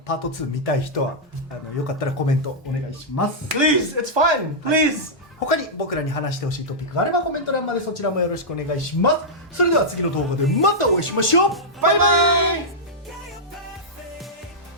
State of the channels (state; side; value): normal; both; correlation -0.09